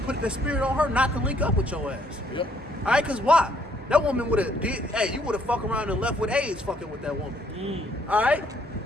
the spirit on her not to link up with your ass. Yep. All right, because why? That woman would have you would have fucked around and left with AIDS fucking with that woman. All right?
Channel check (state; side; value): normal; both; correlation 0.67